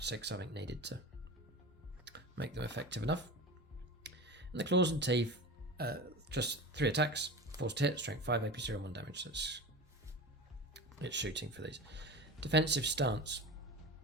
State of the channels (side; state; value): both; normal; correlation 0.30